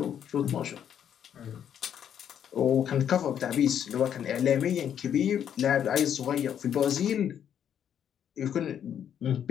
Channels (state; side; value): quieter; right; 9.2 dB